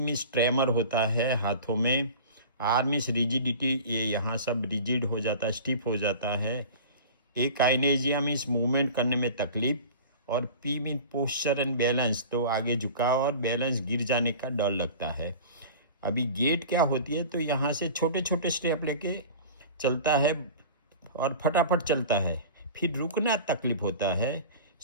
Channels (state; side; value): inverted; both; correlation -0.37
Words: ट्रेमर होता है हाथों में, आर मीन्स रिजिडिटी, ये यहाँ सब रिजिड हो जाता है, स्टिफ हो जाता है। ए काइनेजिया मीन्स मूवमेंट करने में तकलीफ, और P mean posture and balance, तो आगे झुकाव और बैलेंस गिर जाने का डर लगता है। अभी गेट क्या होती है, तो यहाँ से छोटे छोटे स्टेप लेके चलता है और फटाफट चलता है, फिर रुकना तकलीफ होता है,